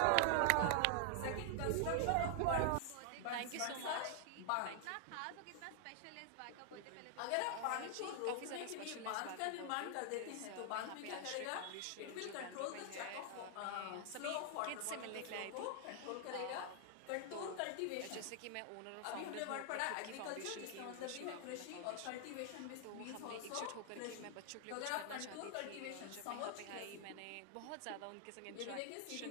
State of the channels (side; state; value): both; different; correlation 0.00